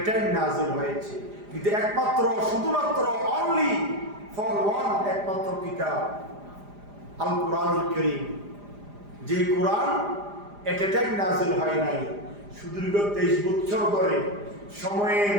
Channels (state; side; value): late; left; 4.9 ms